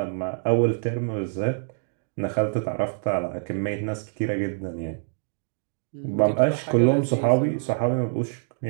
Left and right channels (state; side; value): silent; left; digital silence